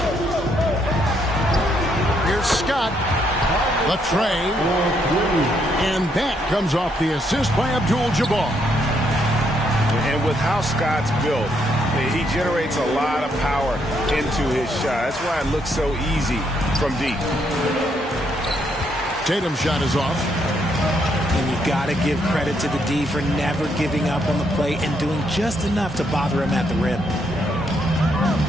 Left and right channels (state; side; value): normal; both; correlation 0.74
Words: Here's Scott. The tray. And that comes off the assist by Abdul-Jabbar. And with how Scott's built, he generates a lot of power into his shot. That's why it looks so easy from deep. Tatum's shot is off. And you got to give credit to the D for never giving up on the play and doing just enough to bother him at the rim.